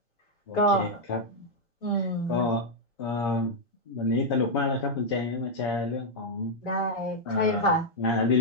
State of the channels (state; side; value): normal; both; correlation -0.03